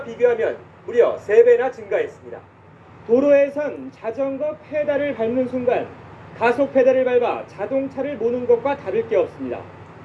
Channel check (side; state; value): both; identical; correlation 1.00